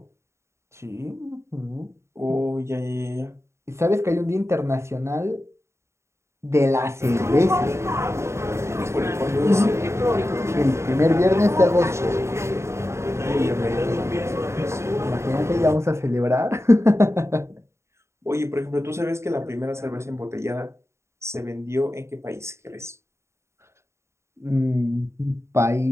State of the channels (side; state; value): left; late; 0.13 ms